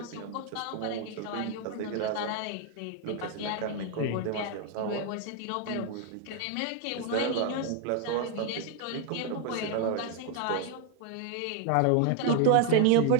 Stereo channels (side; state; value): both; different; correlation 0.00